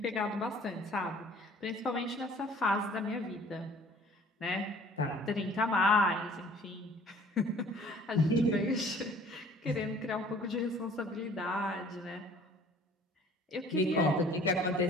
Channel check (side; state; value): both; normal; correlation 0.52